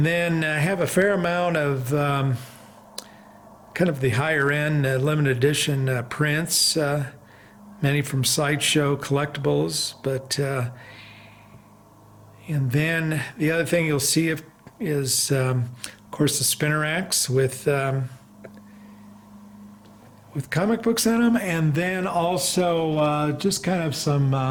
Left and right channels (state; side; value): identical; both; correlation 1.00